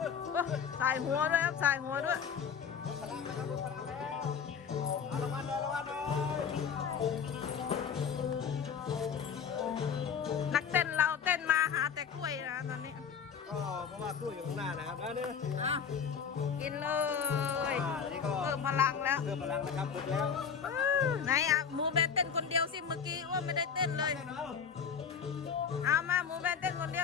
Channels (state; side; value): quieter; right; 6.9 dB